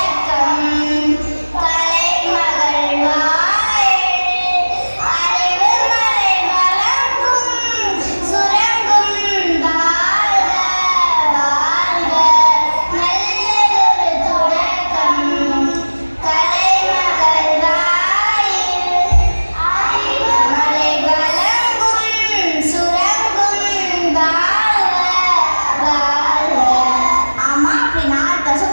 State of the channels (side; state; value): both; inverted; correlation -1.00